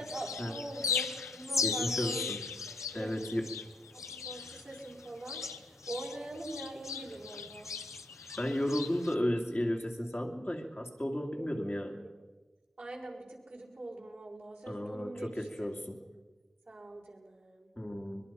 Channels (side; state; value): both; normal; correlation 0.77